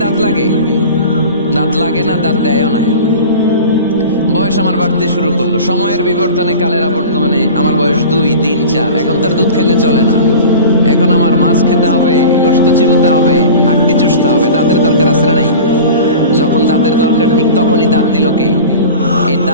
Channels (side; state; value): both; inverted; correlation -0.36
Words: দাঁত লাগে? দাঁত লাগে না, দাঁত দেয়ও না। বয়স আমার বাড়তে শুরু করলো, সময়ের বিবর্তনে, কালের আবর্তমানে আমার বয়স 2, 3, 4। এখন তার দুধ খেলে চলে না, এখন আমার মাছ খেতে হবে, গোশত চিবোতে হবে, হাড্ডি চুষতে হবে। দাঁতের দরকার আছে না নাই? যখন দাঁতের দরকার ঠিক তখনই দাঁত দিল কে? এই